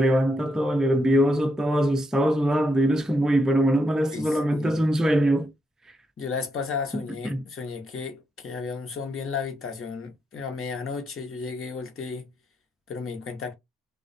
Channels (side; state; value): both; normal; correlation 0.81